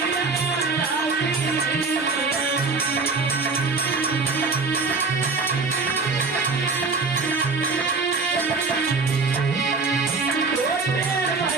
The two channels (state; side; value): quieter; left; 4.2 dB